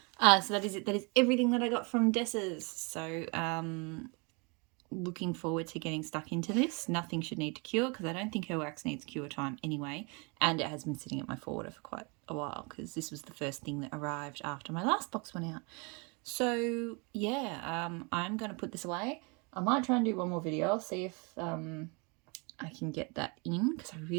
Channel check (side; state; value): left; quieter; 31.4 dB